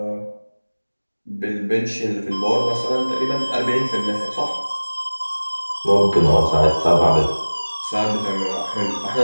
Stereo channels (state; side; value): inverted; both; correlation -1.00